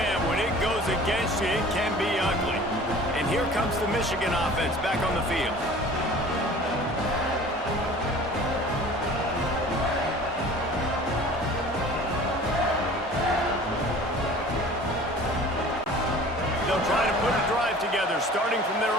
when it goes against you, it can be ugly. And here comes the Michigan offense back on the field. They'll try to put a drive together, starting from their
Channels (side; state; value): both; normal; correlation 0.45